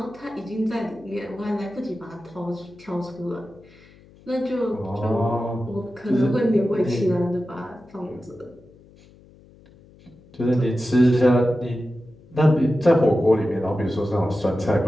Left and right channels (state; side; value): noise; left; hum, 26 dB below the sound